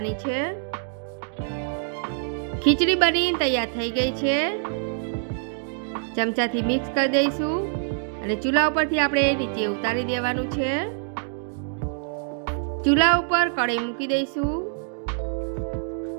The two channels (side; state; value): left; silent; digital silence